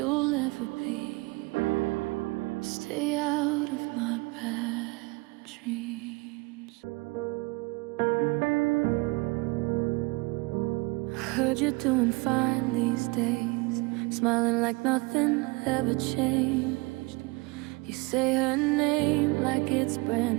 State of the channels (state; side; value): quieter; left; 26.1 dB